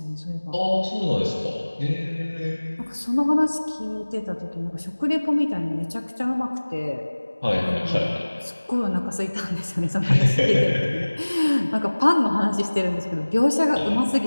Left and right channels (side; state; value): both; inverted; correlation -1.00